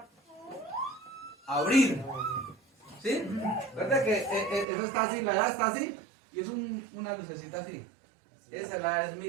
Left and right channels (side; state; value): left; drops out; at 4.7 s